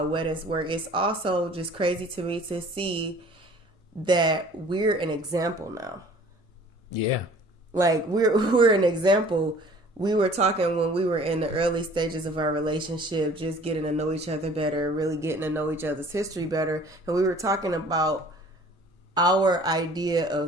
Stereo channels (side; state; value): both; normal; correlation 0.50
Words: weddings work. It's also just crazy to me to see that we're an example now. Yeah. Like we're an example. We were talking when we were in the early stages of our relationship, just getting to know each other better, really getting to know each other's history better. And we were talking about our idea of